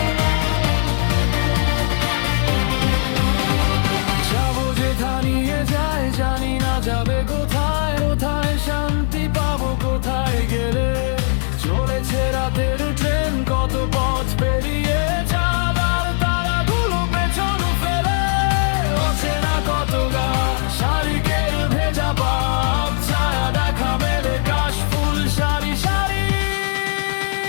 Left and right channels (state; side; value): silent; right; digital silence